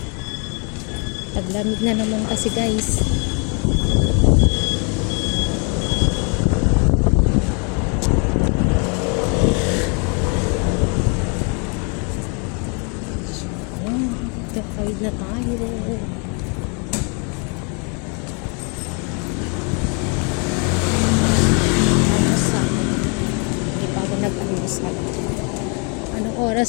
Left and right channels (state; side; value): quieter; right; 36.0 dB